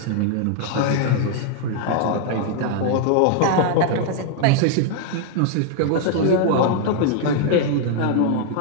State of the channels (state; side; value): different; both; correlation 0.00